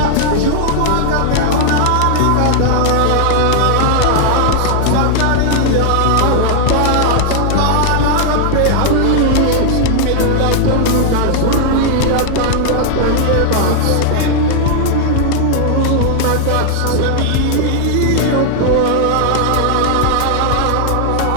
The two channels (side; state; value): both; different; correlation 0.00